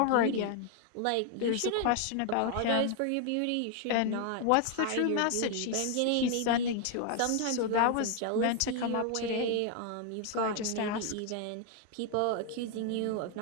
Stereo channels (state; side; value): different; both; correlation 0.00